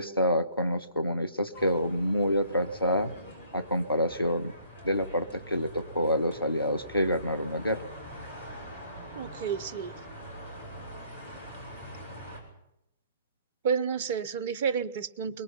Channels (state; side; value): inverted; both; correlation -0.61